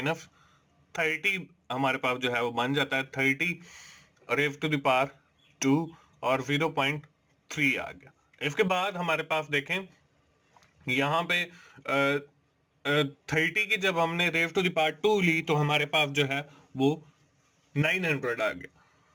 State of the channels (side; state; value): both; identical; correlation 1.00